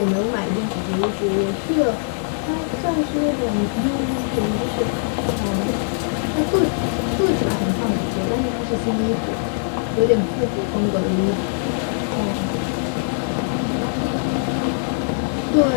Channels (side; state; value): right; silent; digital silence